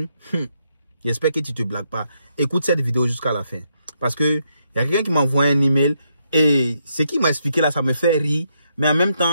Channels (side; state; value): both; inverted; correlation -0.78